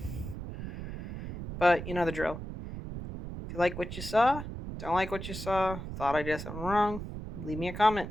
But you know the drill. If you like what you saw, don't like what you saw, thought I did something wrong, leave me a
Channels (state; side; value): noise; right; rumble, 8 dB below the sound